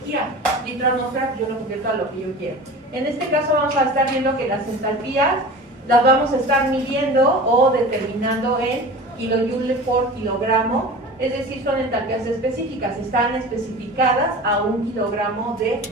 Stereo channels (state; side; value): normal; both; correlation 0.36